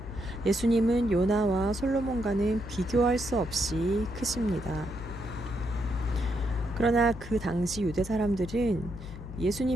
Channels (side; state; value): left; noise; hum, 12 dB below the sound